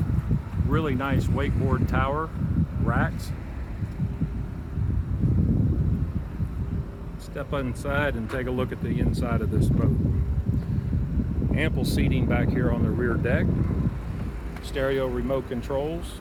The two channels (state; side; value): identical; both; correlation 1.00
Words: Really nice wakeboard tower racks. Step inside and take a look at the inside of this boat. Ample seating back here on the rear deck. Stereo remote controls.